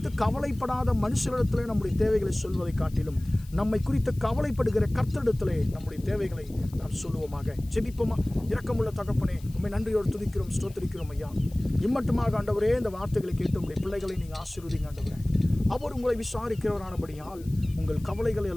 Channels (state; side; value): noise; left; hiss, 24 dB below the sound